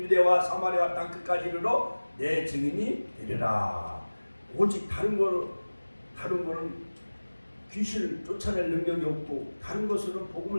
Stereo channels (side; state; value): both; inverted; correlation -1.00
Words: 사마리아 땅 끝까지 이르러 내 증인이 되리라. 오직 다른 거는 귀신을 쫓아낼 능력이 없고 다른 것으로는